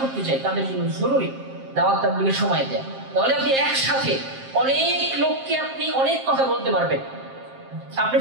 করতে চাই, তাদের জন্য জরুরি দাওয়াত তাবলীগের সময় দেয়া। তাহলে আপনি একসাথে অনেক লোককে আপনি অনেক কথা বলতে পারবেন, আপনি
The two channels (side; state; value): left; late; 7.6 ms